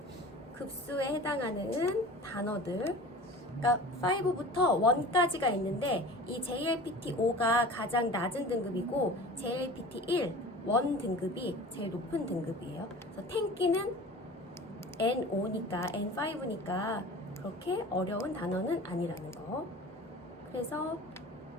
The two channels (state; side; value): normal; both; correlation 0.39